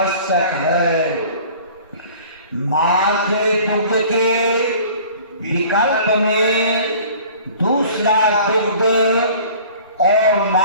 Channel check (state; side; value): inverted; both; correlation -0.47